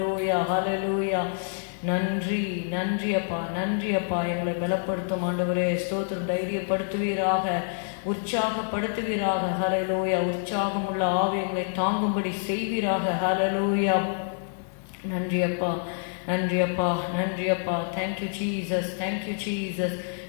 ஹல்லேலூயா. நன்றி நன்றி அப்பா, நன்றி அப்பா. எங்களை பலப்படுத்தும் ஆண்டவரே. ஸ்தோத்திரம். தைரியப்படுத்துவீராக, உற்சாகப்படுத்துவீராக. ஹல்லேலூயா. உற்சாகமுள்ள ஆவி எங்களை தாங்கும்படி செய்வீராக. ஹல்லேலூயா. நன்றி அப்பா, நன்றி அப்பா, நன்றி அப்பா. Thank you Jesus, thank you Jesus.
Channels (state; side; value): silent; right; digital silence